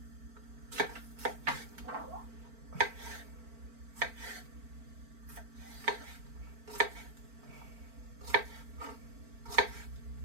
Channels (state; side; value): late; left; 4.4 ms